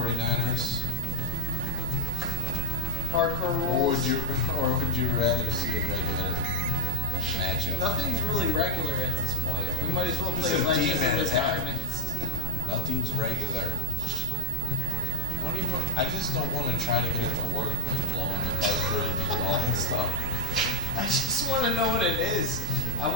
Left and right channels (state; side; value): noise; left; rumble, 9 dB below the sound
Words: Hardcore rules. Or would you rather see a regular matchup. Nothing's really regular at this point. We might as well play It's a Legends of Dmen the tap. Diamonds. Nothing's regular. I just don't want to try to get it to work, like blowing the cartridge and all that stuff. I just want to know what it is. I